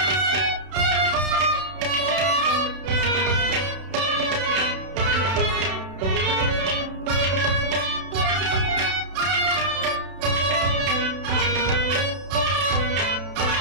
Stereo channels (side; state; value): left; late; 31 ms